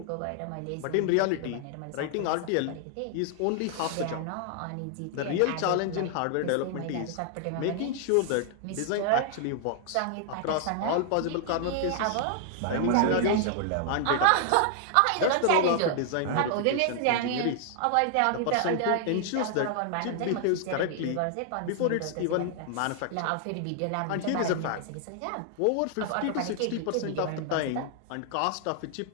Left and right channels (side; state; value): both; different; correlation 0.00